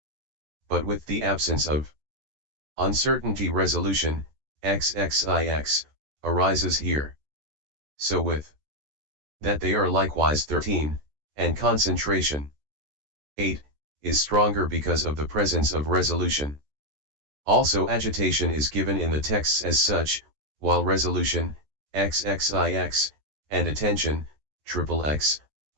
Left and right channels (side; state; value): left; late; 14 ms